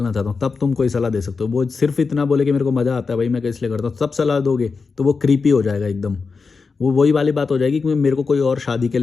चाहता हूँ, तब तुम कोई सलाह दे सकते हो। वो सिर्फ इतना बोले कि मेरे को मज़ा आता है भाई मैं इसलिए करता हूँ, तब सलाह दोगे तो वो क्रीपी हो जाएगा एकदम। वो वही वाली बात हो जाएगी कि मेरे को कोई और शादी के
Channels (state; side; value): quieter; right; 4.7 dB